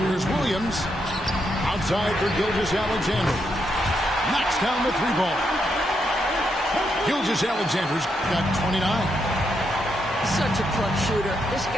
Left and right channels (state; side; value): normal; both; correlation 0.80